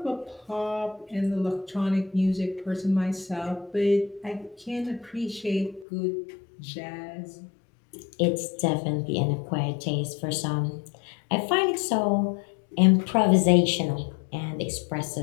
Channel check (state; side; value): drops out; right; at 5.9 s